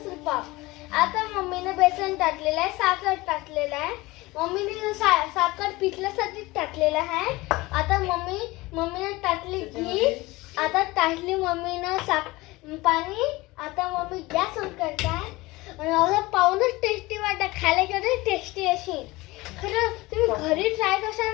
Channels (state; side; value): quieter; right; 21.0 dB